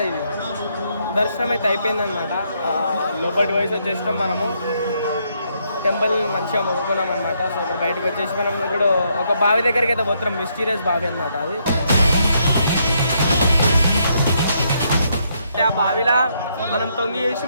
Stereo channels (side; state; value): both; inverted; correlation -0.74